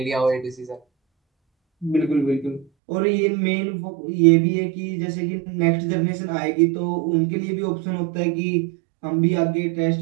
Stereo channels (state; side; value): drops out; left; at 2.7 s